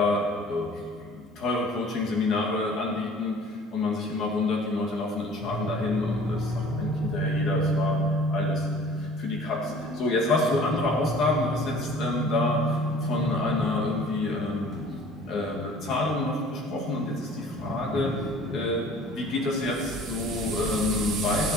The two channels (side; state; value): both; normal; correlation 0.49